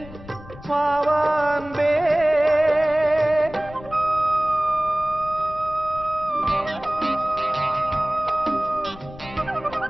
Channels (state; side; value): noise; left; rumble, 18 dB below the sound